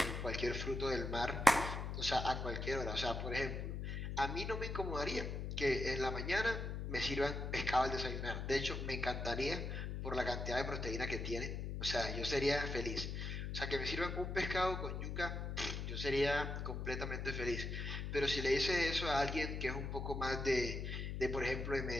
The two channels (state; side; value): noise; left; hum, 4 dB below the sound